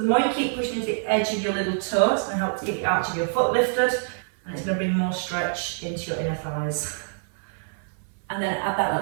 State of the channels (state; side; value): silent; left; 61 dB below the other